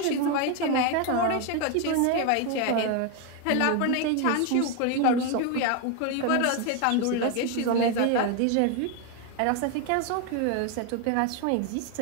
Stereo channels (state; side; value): different; both; correlation 0.01